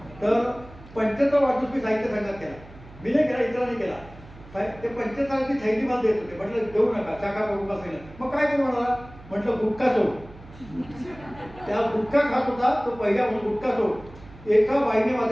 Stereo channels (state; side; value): noise; right; hum, 20 dB below the sound